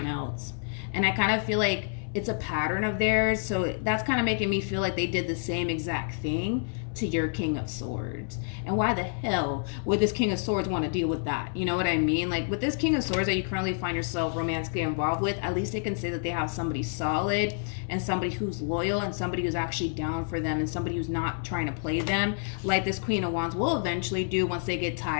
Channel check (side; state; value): right; silent; 59 dB below the other